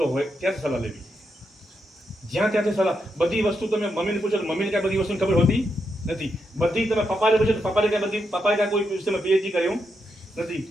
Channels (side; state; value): both; normal; correlation 0.83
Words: હોય ત્યાંથી સલાહ લેવી. જ્યાં ત્યાંથી સલાહ, બધી વસ્તુ તમે મમ્મીને પૂછો તો મમ્મીને ક્યાં બધી વસ્તુની ખબર હોતી નથી. બધી તમે પપ્પાને પૂછો તો પપ્પાએ ક્યાં કોઈ વિષયમાં પીએચડી કર્યું નથી